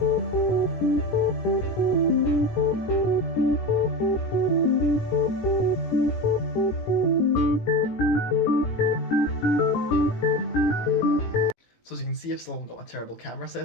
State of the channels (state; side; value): late; right; 18 ms